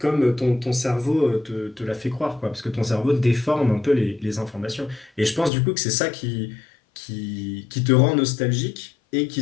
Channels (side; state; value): right; drops out; at 5.5 s